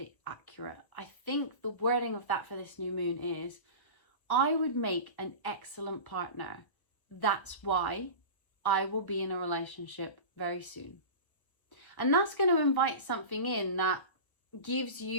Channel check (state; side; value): late; right; 1.0 ms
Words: accurate. I think the wording of that for this new moon is, I would make an excellent partner. That's why I will be in a relationship very soon. And that's going to invite something in that gives